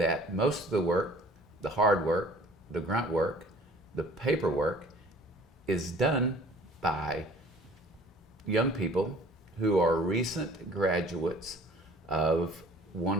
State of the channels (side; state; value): both; normal; correlation 0.51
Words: most of the work, the hard work, the grunt work, the paperwork is done by young people who are recent graduates of